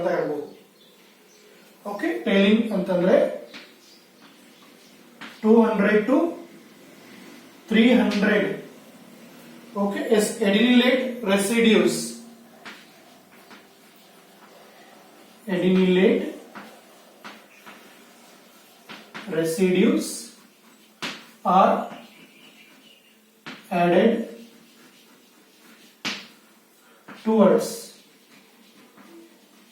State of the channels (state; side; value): identical; both; correlation 1.00